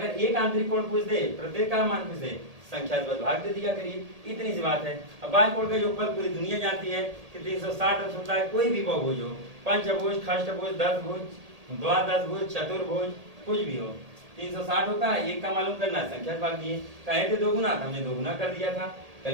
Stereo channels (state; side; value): late; left; 1.8 ms